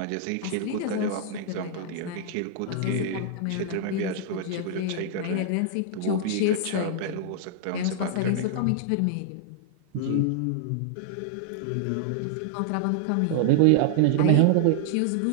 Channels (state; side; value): different; both; correlation -0.01